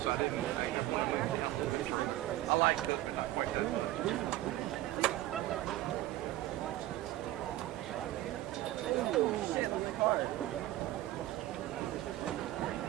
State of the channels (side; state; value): left; quieter; 15.4 dB